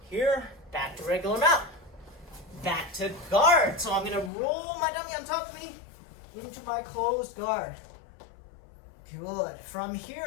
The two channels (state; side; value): drops out; right; at 4.3 s